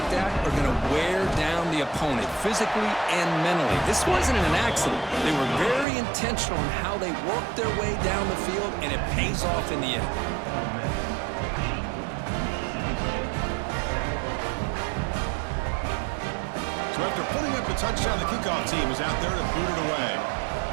that are going to wear down the opponent physically and mentally. This wasn't an accident. They were very intentional in how they worked their way down the field, and it pays off in the end. So after putting up the touchdown, the kickoff team is out there to boot it away.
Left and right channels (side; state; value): left; drops out; at 5.9 s